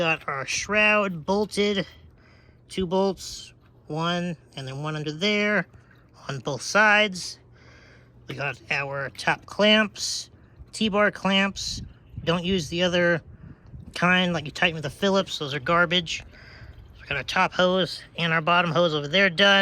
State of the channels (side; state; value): both; identical; correlation 1.00